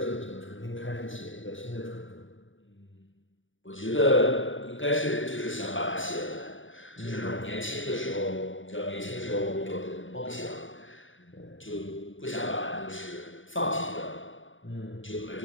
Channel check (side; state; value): right; late; 0.57 ms